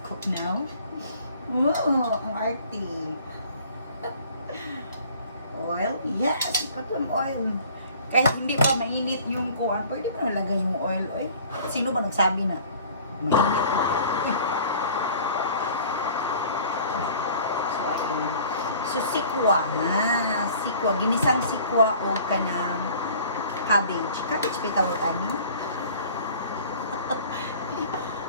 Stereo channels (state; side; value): inverted; both; correlation -0.49